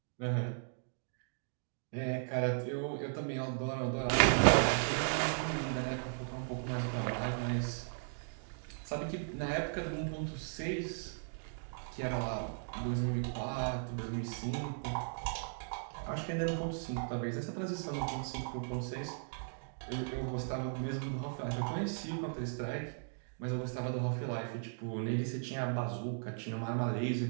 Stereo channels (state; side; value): silent; left; digital silence